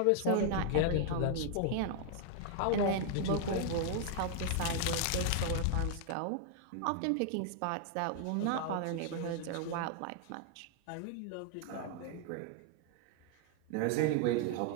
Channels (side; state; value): both; different; correlation 0.00